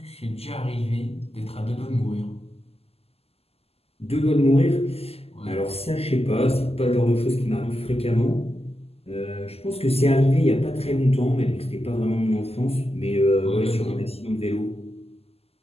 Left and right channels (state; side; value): late; right; 0.29 ms